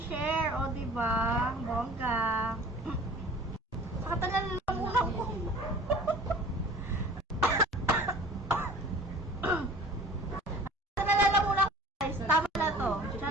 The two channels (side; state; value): both; normal; correlation 0.45